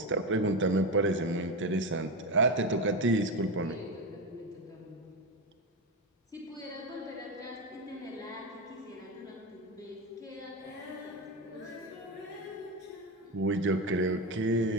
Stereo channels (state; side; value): normal; both; correlation 0.15